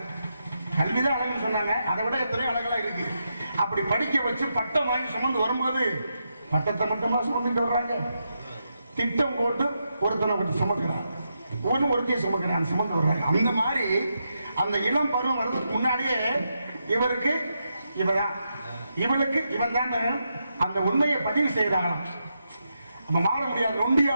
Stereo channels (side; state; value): both; inverted; correlation -0.84